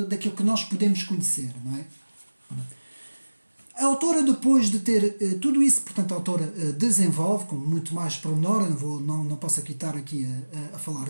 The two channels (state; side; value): inverted; both; correlation -1.00